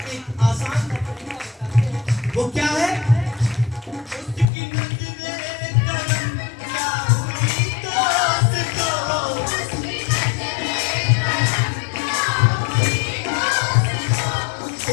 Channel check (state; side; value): drops out; right; at 4.5 s